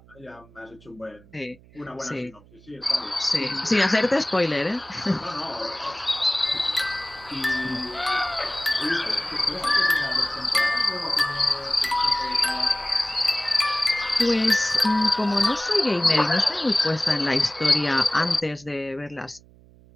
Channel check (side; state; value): right; noise; hum, 26 dB below the sound